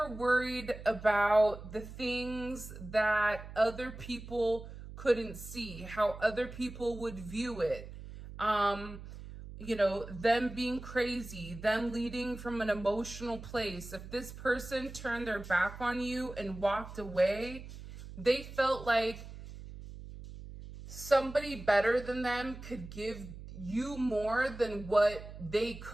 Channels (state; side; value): noise; right; hum, 13 dB below the sound